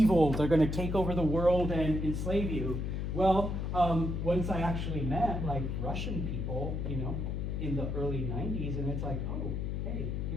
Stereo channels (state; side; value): noise; left; hum, 2 dB below the sound